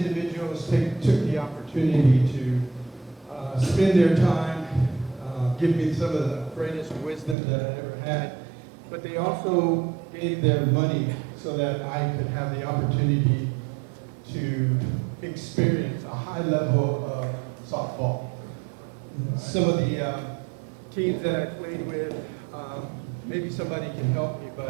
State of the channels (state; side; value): drops out; left; at 7.4 s